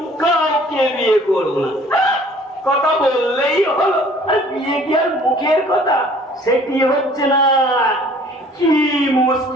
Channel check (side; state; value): both; normal; correlation 0.53